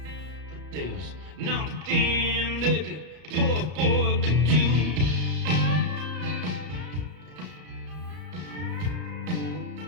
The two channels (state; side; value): late; left; 33 ms